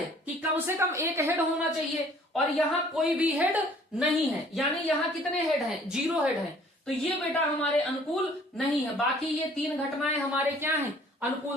कि कम से कम एक हेड होना चाहिए, और यहां कोई भी हेड नहीं है, यानी यहां कितने हेड हैं? 0 हेड है। तो ये बेटा हमारे अनुकूल नहीं है। बाकी ये 3 घटनाएं हमारे क्या हैं?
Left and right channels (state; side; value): normal; both; correlation 0.56